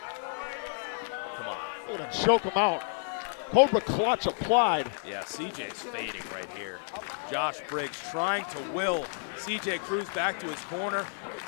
Come on. We're gonna choke him out. Cobra clutch applied. Yeah, CJ's fading right here. Josh Briggs trying to will CJ Cruz back to his corner.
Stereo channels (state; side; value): silent; right; 57 dB below the other